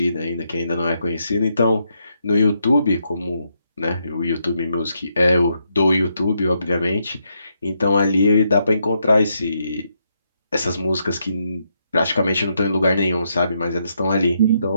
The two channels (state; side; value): inverted; both; correlation -0.79